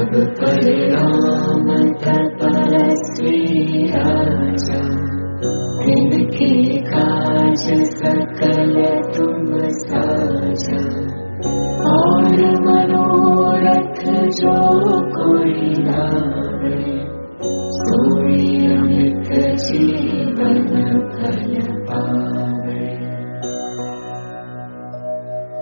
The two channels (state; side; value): inverted; both; correlation -1.00